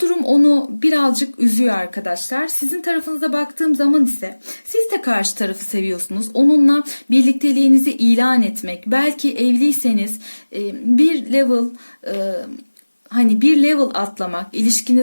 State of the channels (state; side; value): inverted; both; correlation -1.00